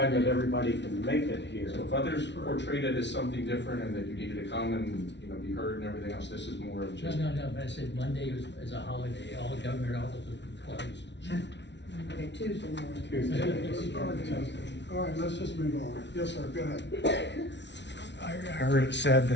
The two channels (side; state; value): right; late; 0.51 ms